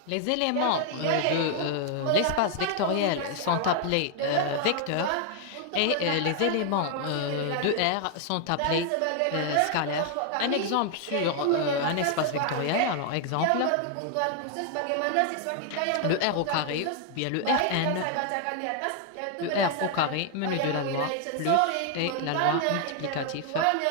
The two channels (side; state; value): both; different; correlation 0.00